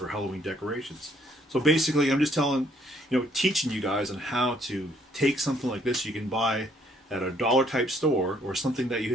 Halloween decorations. So basically I'm just teaching you guys on how to take something like this you can buy at a dollar type store or something that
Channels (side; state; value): both; normal; correlation 0.65